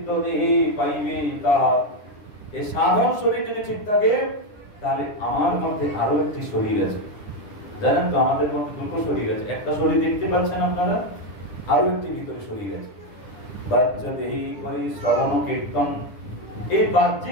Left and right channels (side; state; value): right; late; 9.9 ms